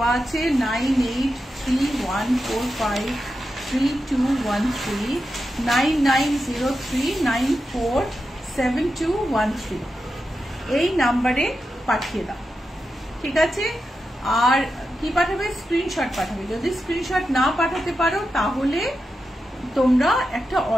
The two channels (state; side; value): normal; both; correlation 0.89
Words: আছে 9831453213 9903947213, এই নাম্বারে পাঠিয়ে দাও, ঠিক আছে? আর কি পাঠাবে? স্ক্রিনশট পাঠাবে। যদি স্ক্রিনশট না পাঠাতে পারো তাহলে তোমরা একটা